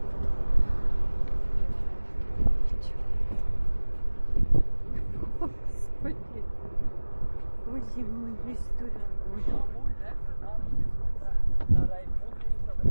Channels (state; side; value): inverted; both; correlation -1.00